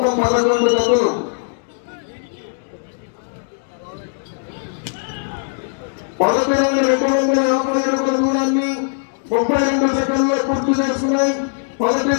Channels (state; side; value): silent; right; 66 dB below the other